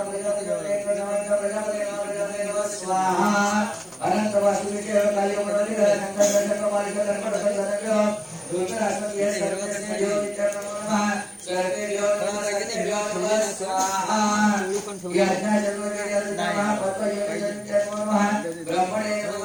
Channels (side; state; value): right; noise; hiss, 29 dB below the sound